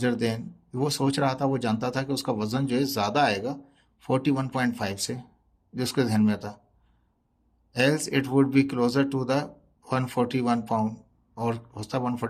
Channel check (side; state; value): both; identical; correlation 1.00